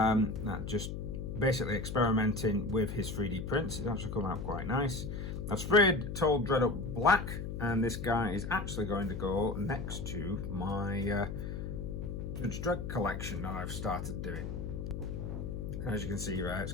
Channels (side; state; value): left; noise; hum, 5 dB below the sound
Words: just basically experimenting with his 3D prints. It's actually come out quite nice. I've sprayed Told Dredd up black, and this guy is actually going to go next to my Judge Dredd collection that I've started doing. As you can see, right, it's